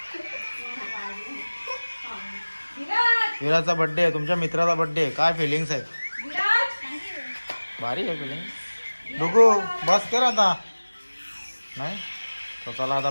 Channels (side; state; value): both; inverted; correlation -1.00